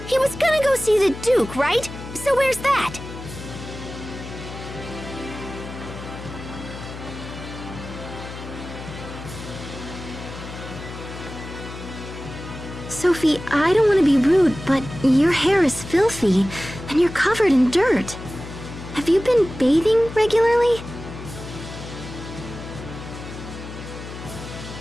He was gonna go see the Duke, right? So where's that? Sophie, I don't want to be rude, but your hair is filthy, and you're covered in dirt. Have you been bathing regularly?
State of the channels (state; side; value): noise; left; hum, 11 dB below the sound